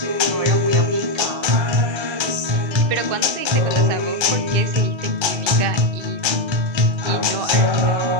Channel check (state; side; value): late; left; 1.3 ms